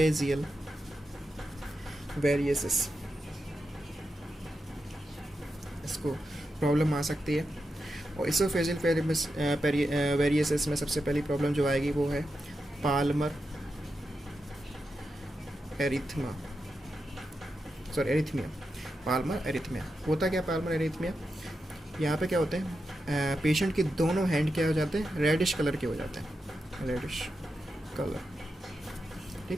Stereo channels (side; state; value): both; normal; correlation 0.88